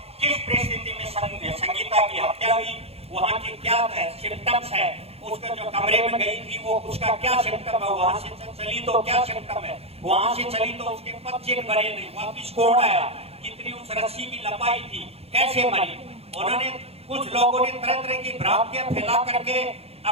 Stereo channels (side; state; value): left; late; 0.29 ms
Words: किस परिस्थिति में संगीता की हत्या हुई, वहाँ की क्या सिम्टम्स है, उसका जो कमरे में गई थी वो उसका क्या सिम्टम है, वहां से चली तो क्या सिम्टम है, वहां से चली तो उसके पच्चीस मरे नहीं, वापिस कौन आया, कितनी उस रस्सी की लंबाई थी, कैसे मरी। उन्होंने, कुछ लोगों ने तरह तरह की भ्रांतियां फैला करके